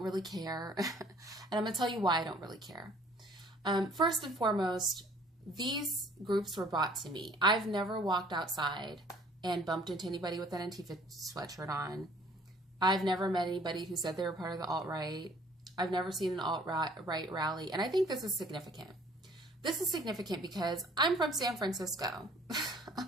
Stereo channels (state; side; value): normal; both; correlation 0.56